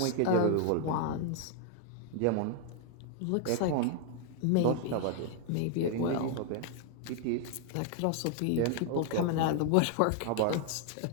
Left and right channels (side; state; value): both; different; correlation 0.00